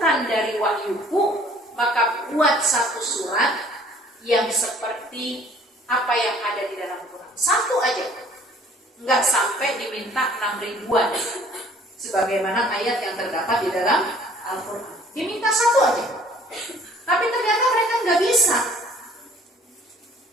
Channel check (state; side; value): normal; both; correlation 0.55